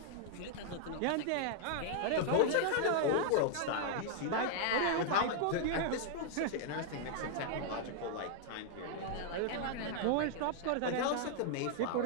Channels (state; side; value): different; both; correlation -0.01